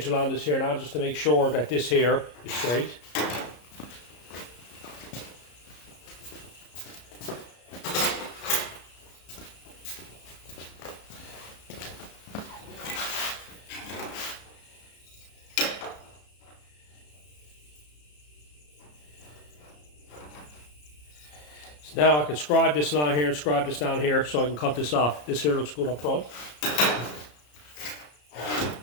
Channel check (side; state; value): right; late; 33 ms